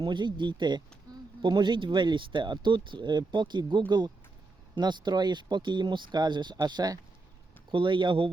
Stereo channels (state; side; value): quieter; left; 3.5 dB